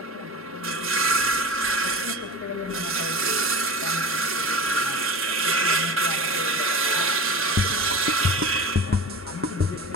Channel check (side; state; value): both; normal; correlation 0.31